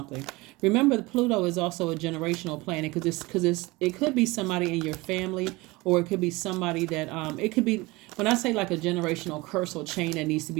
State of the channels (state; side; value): quieter; left; 22.4 dB